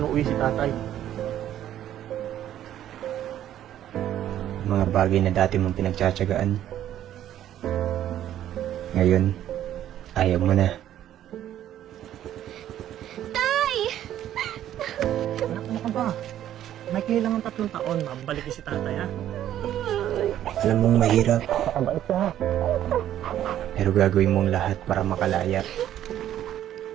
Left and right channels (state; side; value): quieter; left; 11.6 dB